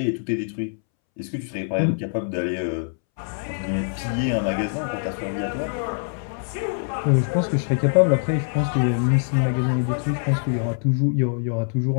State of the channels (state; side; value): silent; right; 63 dB below the other